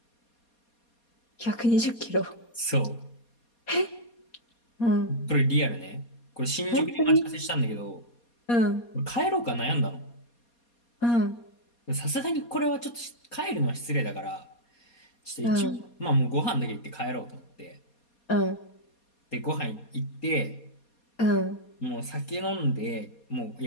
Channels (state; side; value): late; right; 4.2 ms